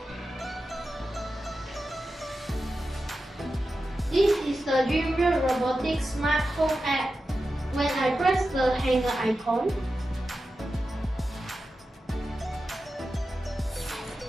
This is the Dream World Robotics Smart Home app. When I press the hanger icon,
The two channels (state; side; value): normal; both; correlation 0.92